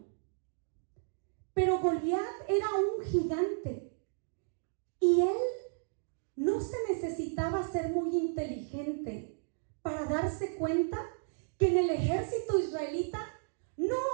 Pero Goliat era un gigante y él no se necesitaba ser muy inteligente para darse cuenta que en el ejército israelita no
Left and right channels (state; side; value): silent; left; digital silence